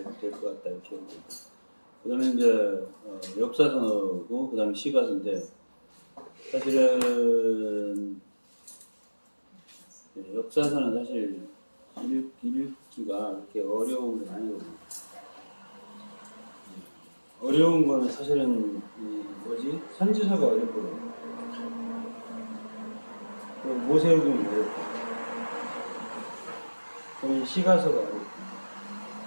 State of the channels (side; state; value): both; inverted; correlation -1.00